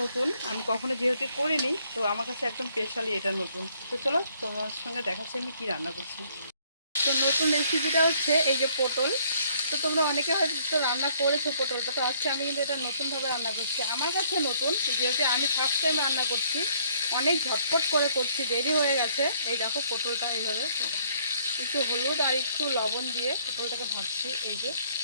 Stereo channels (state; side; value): inverted; both; correlation -0.64